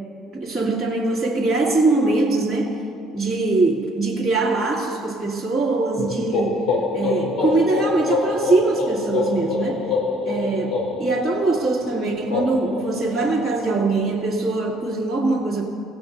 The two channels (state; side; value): normal; both; correlation 0.62